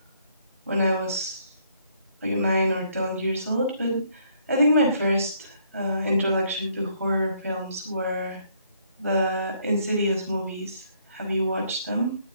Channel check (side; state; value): both; inverted; correlation -0.67